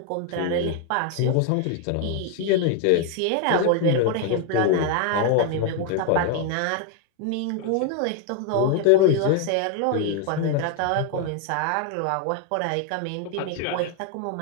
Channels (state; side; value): different; both; correlation 0.01